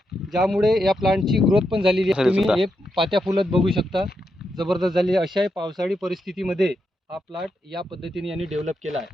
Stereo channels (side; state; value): both; normal; correlation 0.83